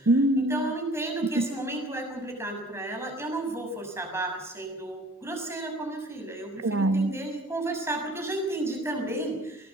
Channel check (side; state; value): both; normal; correlation 0.50